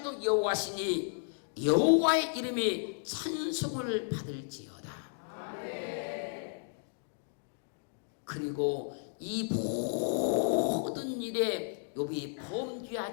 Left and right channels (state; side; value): silent; right; digital silence